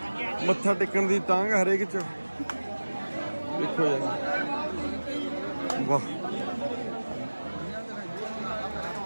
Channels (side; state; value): both; inverted; correlation -1.00